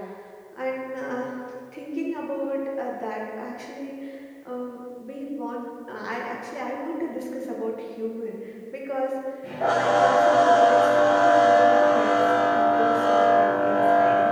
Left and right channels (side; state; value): both; identical; correlation 1.00